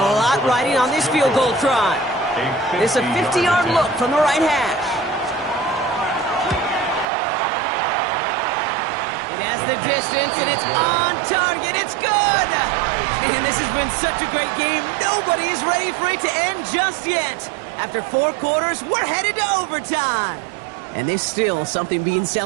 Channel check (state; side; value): drops out; left; at 7.1 s